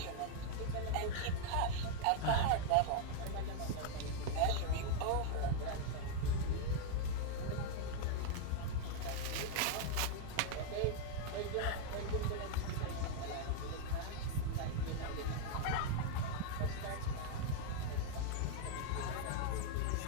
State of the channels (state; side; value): different; both; correlation 0.00